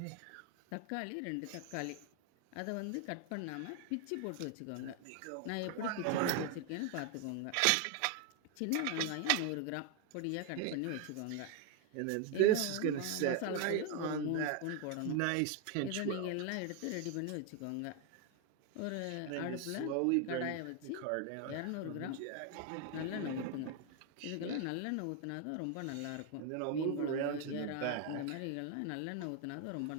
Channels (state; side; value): different; both; correlation 0.01